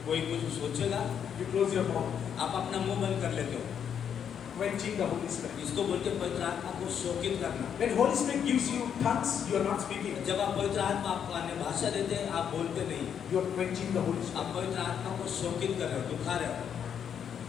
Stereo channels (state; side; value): quieter; right; 8.2 dB